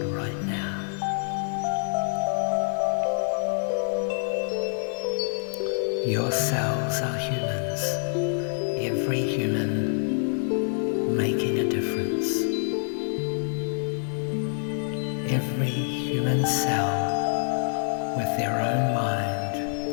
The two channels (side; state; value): right; silent; 61 dB below the other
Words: right now. Your cells are humans, every human making a difference. Every human cell with their own mind